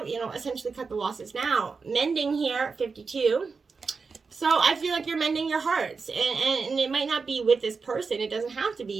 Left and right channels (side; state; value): left; quieter; 4.8 dB